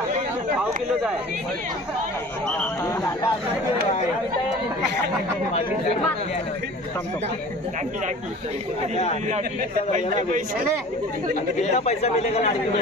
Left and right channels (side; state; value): both; normal; correlation 0.43